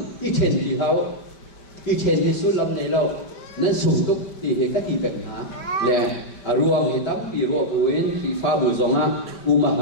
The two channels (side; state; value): right; late; 5.2 ms